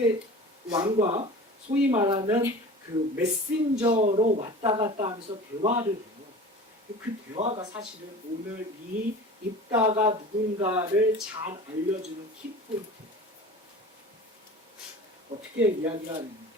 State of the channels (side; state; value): both; normal; correlation 0.38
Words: 왕과 소위 말하는 그 메신저로 왔다 갔다 하면서 대화를 해요. 그 대화가 사실은 오늘 이 입다가 누군가를 잘 알려주는 키포인트예요. 어떻게 이야기가